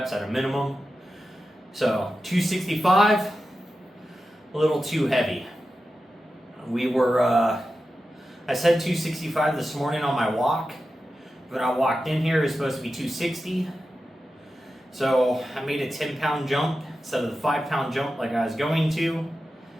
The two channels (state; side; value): normal; both; correlation 0.92